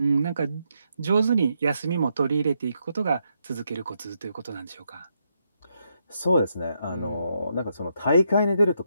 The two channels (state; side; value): inverted; both; correlation -0.80